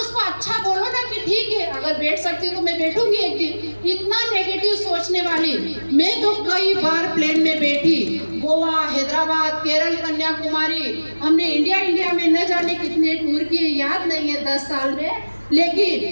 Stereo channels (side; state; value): both; inverted; correlation -1.00